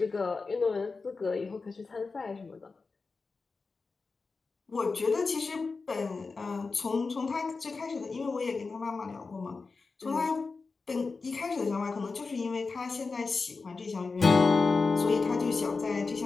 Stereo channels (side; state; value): right; quieter; 4.3 dB